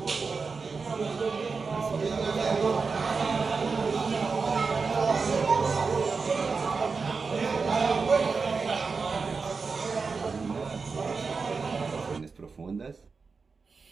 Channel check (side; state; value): left; quieter; 4.7 dB